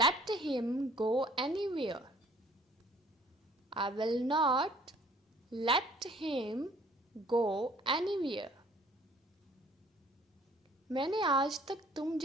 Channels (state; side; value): normal; both; correlation 0.57